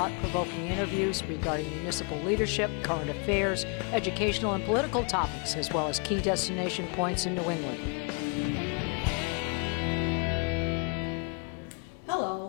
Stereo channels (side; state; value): right; quieter; 33.5 dB